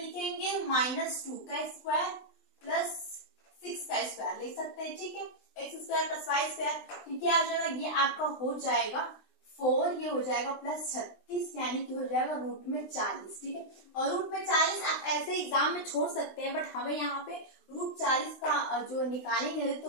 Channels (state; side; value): late; right; 20 ms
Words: -2 का स्क्वायर प्लस 6 का स्क्वायर लिख सकते हैं, ठीक है, x square plus y square. तो क्या हो जाएगा, ये आपका हो जाएगा 4, ये हो जाएगा प्लस 36, यानी कि हो जाएगा रूट में 40, ठीक है। और रूट में 40 आप ऐसे एग्जाम में छोड़ सकते हैं, बट हमें यहाँ पे रूट 40 का जो निकालेंगे